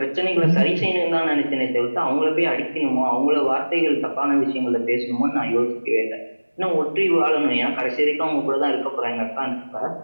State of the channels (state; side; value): inverted; both; correlation -1.00